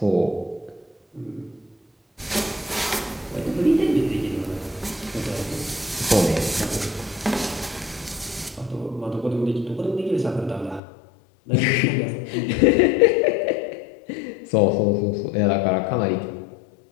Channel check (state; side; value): drops out; right; at 10.8 s